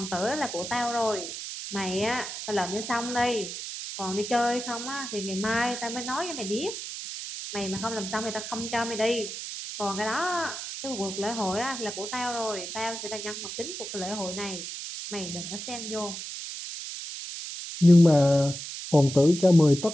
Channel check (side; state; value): right; noise; hiss, 8 dB below the sound